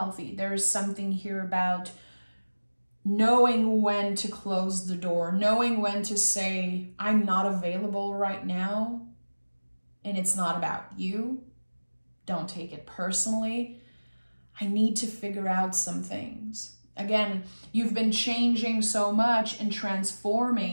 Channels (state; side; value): inverted; both; correlation -1.00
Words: There is something here about knowing when to close the door, knowing when to say, I'm not available right now, and it's not about you. Don't take it personally. I need to figure out some things. Again, you've been changing so much and